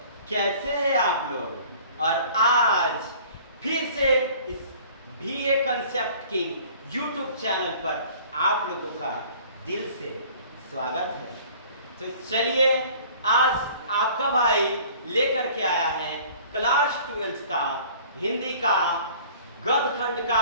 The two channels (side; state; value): both; inverted; correlation -0.49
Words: कैसे हैं आप लोग? और आज फिर से इस BA concept king YouTube channel पर आप लोगों का दिल से स्वागत है। तो चलिए, आज आपका भाई लेकर के आया है क्लास 12 का हिंदी का गद्य खंड